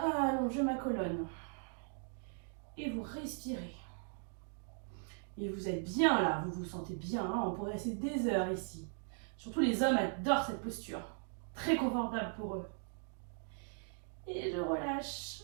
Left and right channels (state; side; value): silent; left; 52 dB below the other